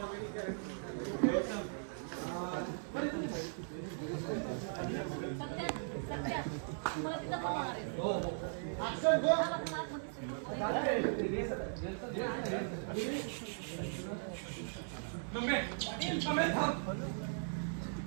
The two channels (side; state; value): left; silent; 52 dB below the other